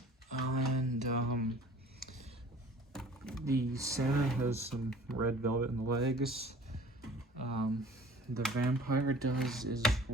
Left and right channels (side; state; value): both; normal; correlation 0.48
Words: And the Santa has some red velvet in the legs. The vampire does as